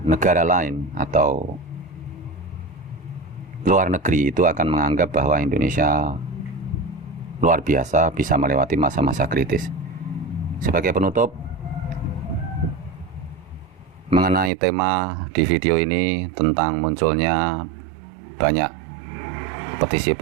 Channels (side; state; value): left; drops out; at 14.5 s